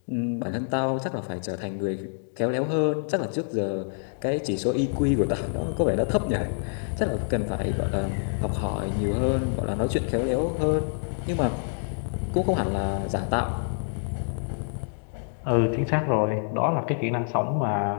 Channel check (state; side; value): silent; right; 60 dB below the other